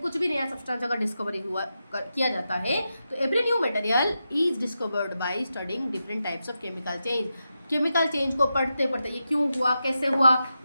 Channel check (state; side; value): inverted; both; correlation -0.89